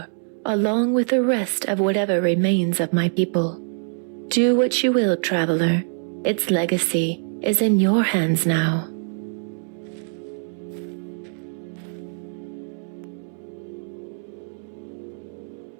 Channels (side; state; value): left; silent; 63 dB below the other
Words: along with the rest of whatever remains of my people. Do what you will, traveler. Its legacy is in your hands now.